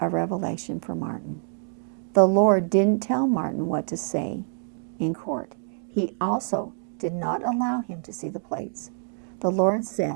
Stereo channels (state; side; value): silent; left; 61 dB below the other